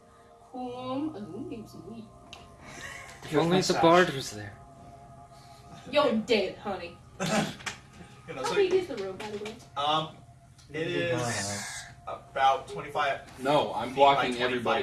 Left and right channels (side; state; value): both; identical; correlation 1.00